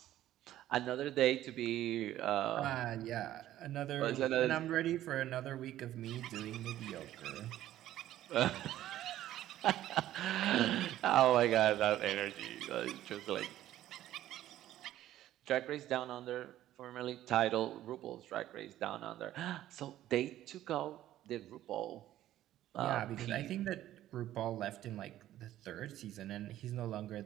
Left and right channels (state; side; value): quieter; left; 13.3 dB